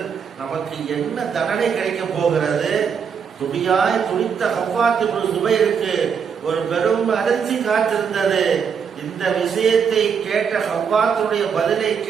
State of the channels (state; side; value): quieter; left; 6.7 dB